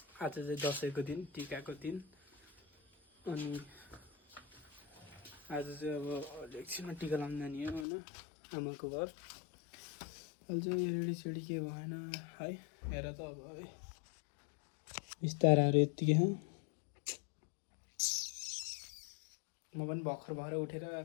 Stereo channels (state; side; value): drops out; right; at 7.9 s